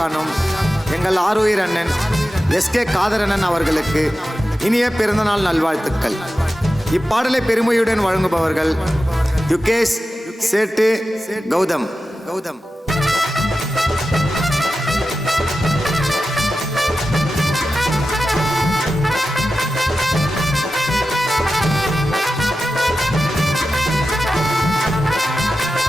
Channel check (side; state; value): both; normal; correlation 0.93